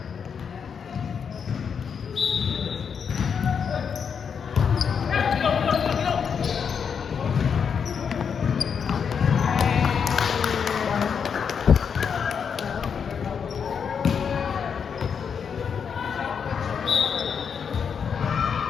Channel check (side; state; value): right; quieter; 6.8 dB